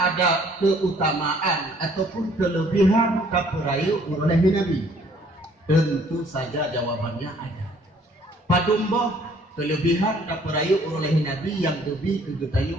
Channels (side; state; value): both; normal; correlation 0.60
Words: keutamaan ataupun kelebihan kapurayu oleh Nabi? Tentu saja jawabannya ada. Padumbo kelebihan kapurayu oleh Nabi yang lebih